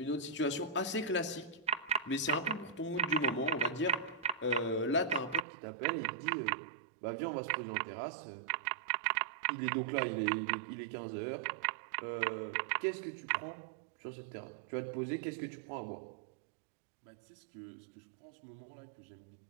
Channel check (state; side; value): drops out; left; at 5.5 s